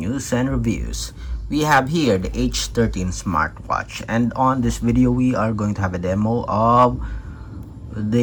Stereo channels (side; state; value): both; identical; correlation 1.00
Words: and reviews. We have here the H13 Smartwatch, and on this video we are going to have a demo of